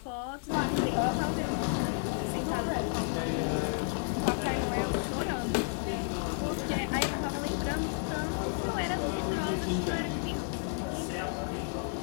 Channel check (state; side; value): silent; right; 57 dB below the other